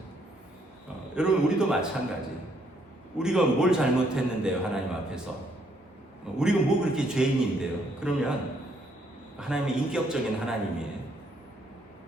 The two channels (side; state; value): both; normal; correlation 0.70